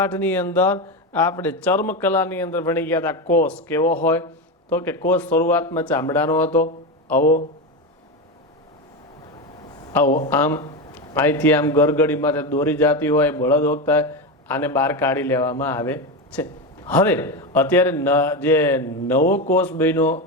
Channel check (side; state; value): both; normal; correlation 0.16